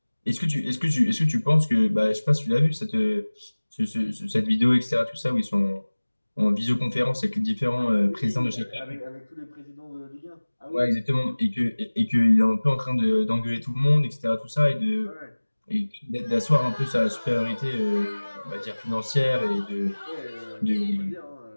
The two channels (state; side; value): inverted; both; correlation -1.00